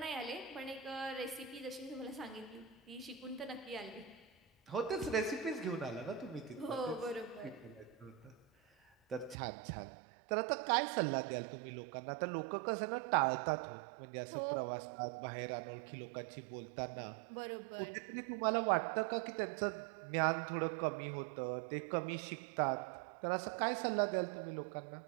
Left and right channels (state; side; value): drops out; left; at 9.3 s